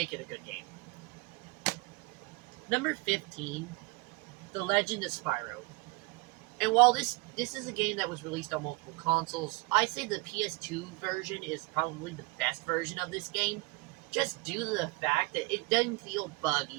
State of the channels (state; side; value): quieter; left; 25.3 dB